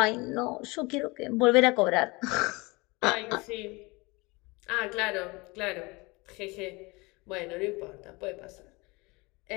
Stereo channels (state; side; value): quieter; right; 25.3 dB